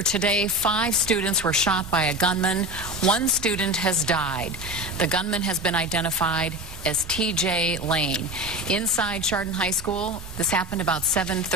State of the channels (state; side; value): normal; both; correlation 0.27